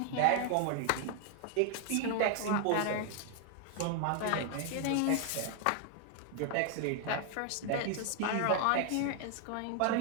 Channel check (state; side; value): different; both; correlation 0.00